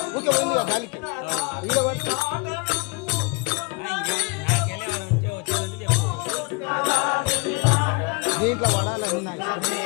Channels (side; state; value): right; quieter; 29.9 dB